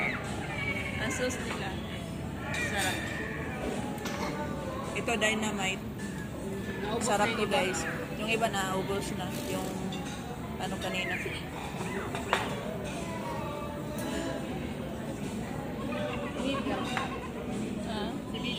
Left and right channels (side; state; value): both; identical; correlation 1.00